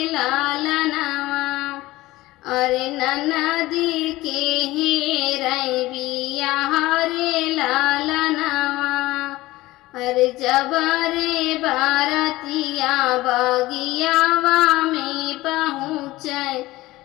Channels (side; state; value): right; quieter; 18.4 dB